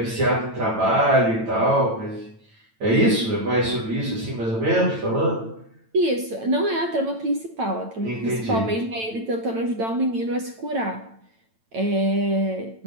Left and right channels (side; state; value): left; late; 9.0 ms